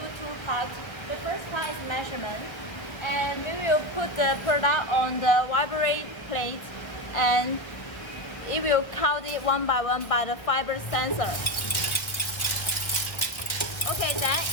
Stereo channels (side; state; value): right; late; 1.6 ms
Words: two parts. The first part is measurement. And we will put the product on the vibrate plate and it will count it one by one by the fiber sensor. Okay, then